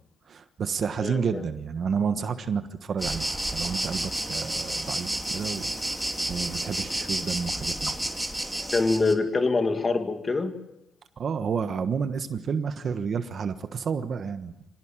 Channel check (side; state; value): both; normal; correlation 0.86